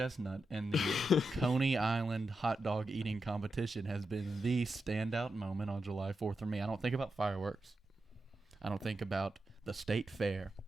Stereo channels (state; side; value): normal; both; correlation 0.88